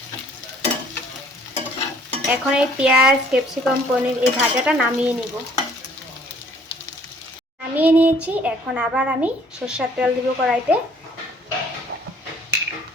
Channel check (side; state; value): both; normal; correlation 0.58